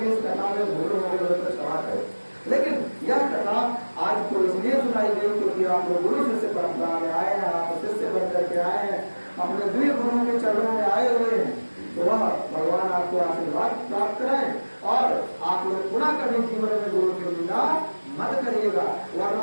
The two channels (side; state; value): both; inverted; correlation -1.00